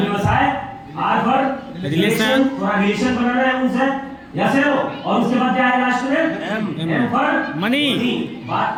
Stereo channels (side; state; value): both; identical; correlation 1.00